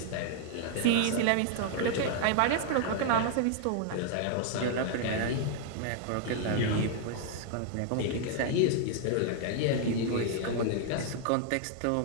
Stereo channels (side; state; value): both; different; correlation 0.00